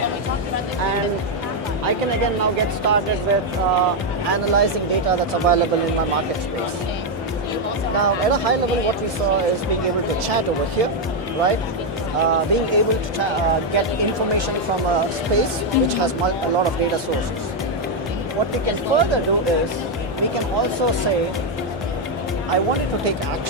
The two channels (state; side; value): normal; both; correlation 0.02